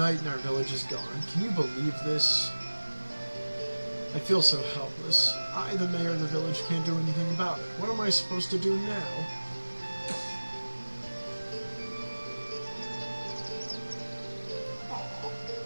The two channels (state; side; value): inverted; both; correlation -1.00